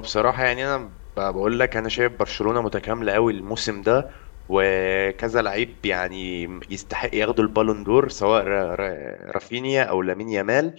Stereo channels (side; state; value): right; silent; digital silence